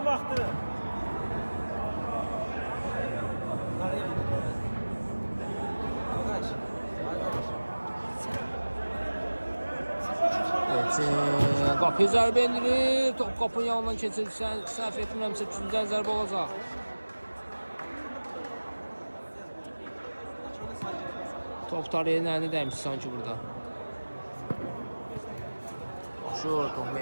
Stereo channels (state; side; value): inverted; both; correlation -1.00